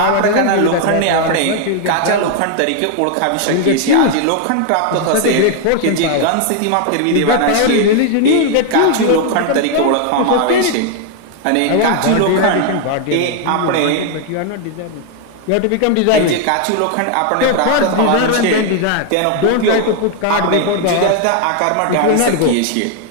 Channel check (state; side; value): different; both; correlation 0.00